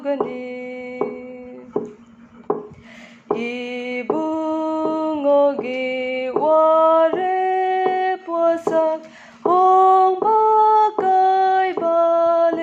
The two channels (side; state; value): both; identical; correlation 1.00